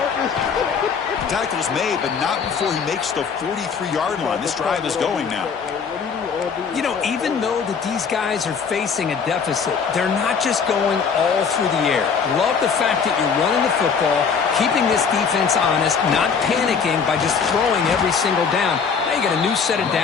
Tackle's made, but not before he makes the 43-yard line. This drive is going now. You know, even though that these guys are facing a deficit, they're not just going all through the air. Love the fact that you're running the football, keeping this defense honest, not panicking by just throwing every single down. Now you got a new set of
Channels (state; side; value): quieter; right; 6.0 dB